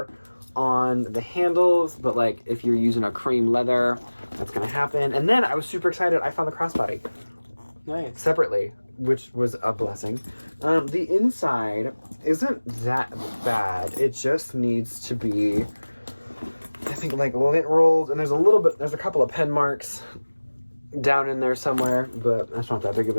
on the handles, but like if you're using a cream leather, that's gonna happen. And then I was super excited. I found the crossbody. Nice. Separately, which was a blessing. The inside isn't that bad. It just needs to be, I think, like lint rolled, and there's a couple of pen marks down in there somewhere, but that's not that big of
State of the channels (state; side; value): inverted; both; correlation -1.00